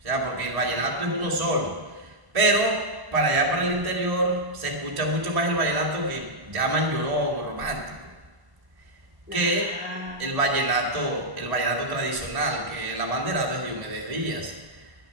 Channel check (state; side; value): late; left; 1.1 ms